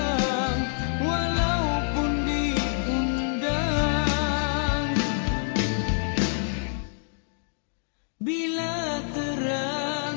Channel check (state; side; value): silent; right; 60 dB below the other